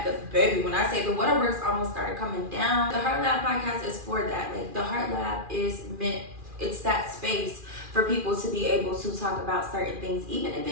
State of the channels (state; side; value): late; left; 2.4 ms